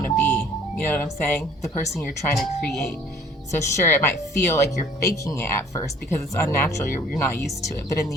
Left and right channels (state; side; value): normal; both; correlation 0.54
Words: to be. You know what I'm saying? The person you're trying to create. So sure, it might feel like you're faking it at first because it's unnatural. You're not used to it. But in